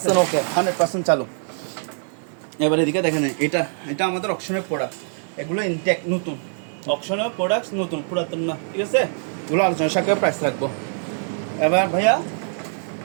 ওকে, 100% চালু। এবার এদিকে দেখেন, এটা আমাদের অকশনের প্রোডাক্ট, এগুলো ইনটেক নতুন, অকশনের প্রোডাক্ট নতুন, পুরাতন না, ঠিক আছে। এগুলো আলোচনা সাপেক্ষে প্রাইস রাখবো। এবার ভাইয়া,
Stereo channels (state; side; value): silent; left; digital silence